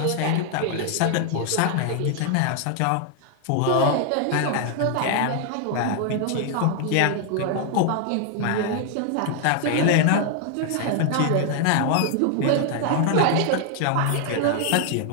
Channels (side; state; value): both; different; correlation 0.00